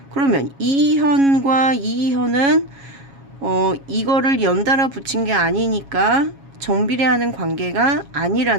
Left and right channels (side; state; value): left; late; 7.3 ms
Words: 그러면 이 현과 이 현은 이거를 연달아 붙인 게 아니니까 정비례하는 관계가